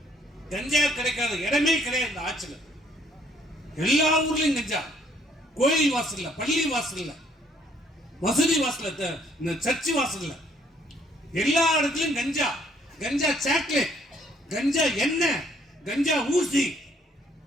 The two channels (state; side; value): normal; both; correlation 0.65